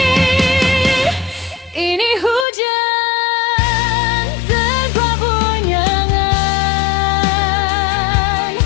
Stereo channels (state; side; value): drops out; right; at 2.5 s